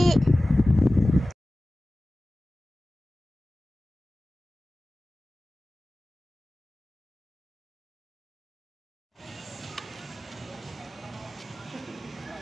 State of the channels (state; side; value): normal; both; correlation 0.97